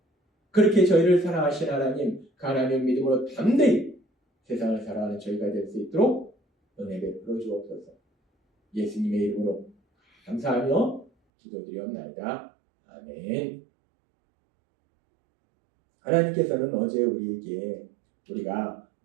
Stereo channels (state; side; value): drops out; left; at 11.1 s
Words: 그렇게 저희를 사랑하신 하나님, 그 하나님의 믿음으로 담대히 세상을 살아가는 저희가 될 수 있도록 은혜 베풀어 주옵소서. 예수님의 이름으로 감사하며 기도드리옵나이다. 아멘. 하나님께서는 어제 우리에게 우리가